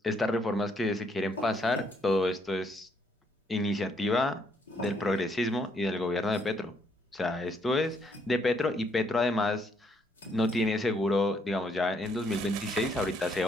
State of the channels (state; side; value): normal; both; correlation 0.71